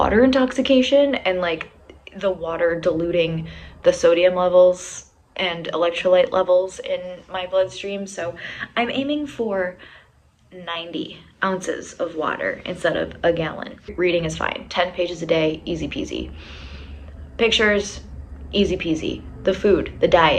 intoxication and like the water diluting the sodium levels and electrolyte levels in my bloodstream. So I'm aiming for 90 ounces of water instead of a gallon. Reading is fine. 10 pages a day, easy peasy. Pictures, easy peasy. The food, the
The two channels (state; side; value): identical; both; correlation 1.00